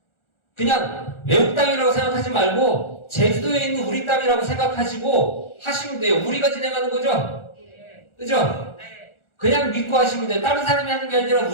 그냥 외국 땅이라고 생각하지 말고 제주도에 있는 우리 땅이라고 생각하시고 하시면 돼요. 우리가 진행하는 거죠? 그죠? 그냥 믿고 하시면 돼요. 다른 사람이 하는 게 아니라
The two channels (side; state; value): right; late; 1.4 ms